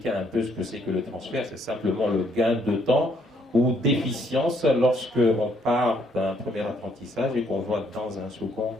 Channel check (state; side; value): normal; both; correlation 0.69